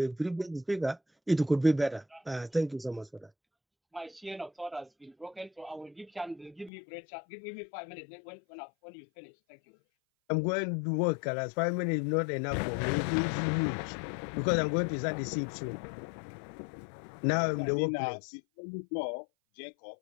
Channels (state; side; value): drops out; right; at 6.7 s